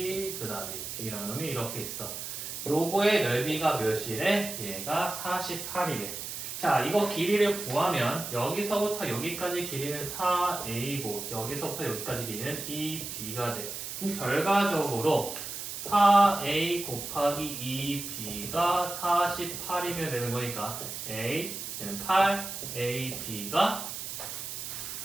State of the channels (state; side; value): noise; right; hiss, 7 dB below the sound